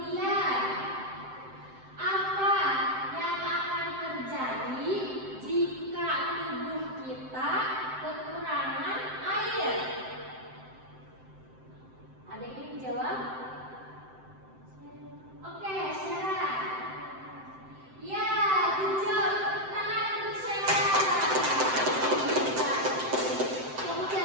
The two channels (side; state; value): left; late; 7.7 ms